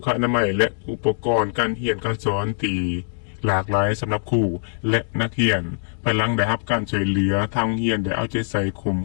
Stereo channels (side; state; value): right; silent; digital silence